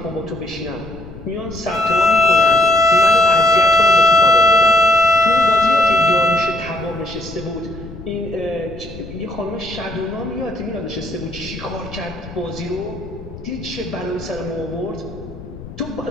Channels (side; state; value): left; noise; rumble, 15 dB below the sound